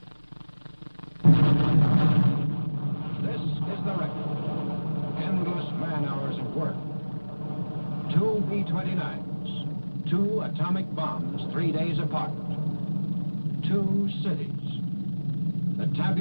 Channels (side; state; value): both; inverted; correlation -1.00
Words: This is the record. Endless man-hours of work. 2 B-29s, 2 atomic bombs 3 days apart, 2 cities. The